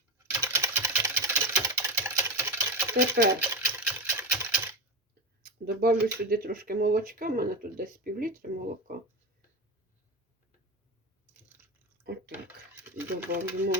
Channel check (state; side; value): normal; both; correlation 0.20